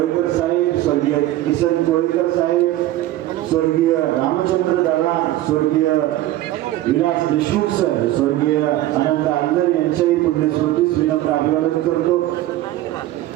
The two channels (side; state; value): left; quieter; 15.0 dB